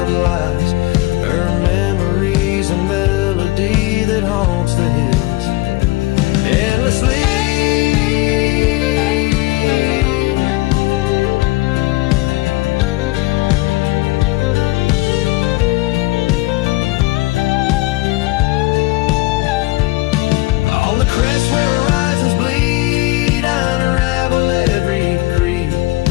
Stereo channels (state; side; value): quieter; right; 20.4 dB